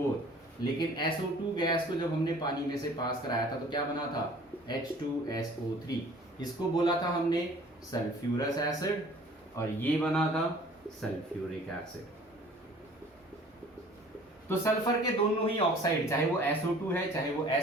लेकिन SO2 गैस को जब हमने पानी में से पास कराया था तो क्या बना था, H2SO3। इसको बोला था हमने सल्फ्यूरस एसिड और ये बना था सल्फ्यूरिक एसिड। तो सल्फर के दोनों ही ऑक्साइड, चाहे वो SO2 है चाहे वो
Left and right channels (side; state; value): both; normal; correlation 0.50